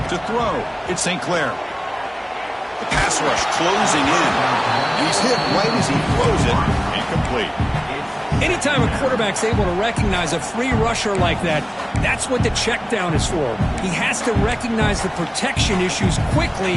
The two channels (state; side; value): identical; both; correlation 1.00